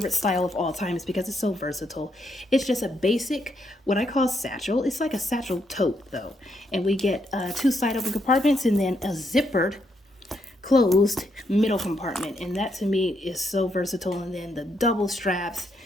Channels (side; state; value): both; normal; correlation 0.77